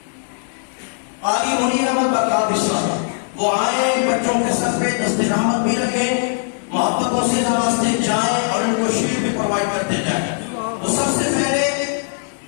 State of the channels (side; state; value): right; silent; digital silence